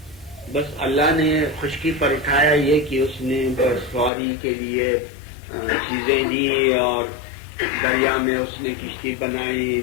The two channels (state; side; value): drops out; right; at 4.1 s